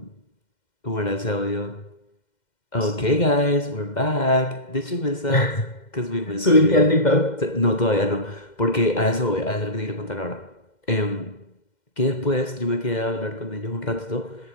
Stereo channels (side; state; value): right; late; 2.1 ms